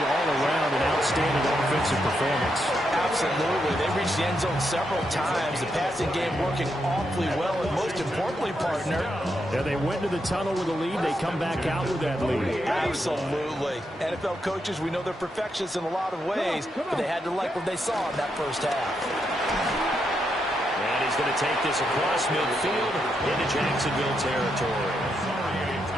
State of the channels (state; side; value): normal; both; correlation 0.81